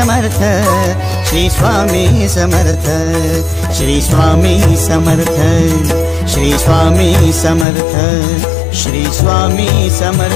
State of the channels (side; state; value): right; drops out; at 7.7 s